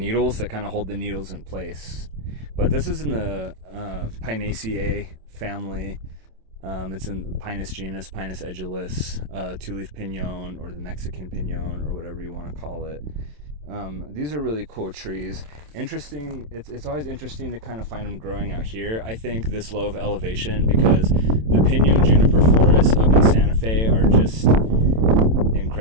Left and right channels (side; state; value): left; late; 27 ms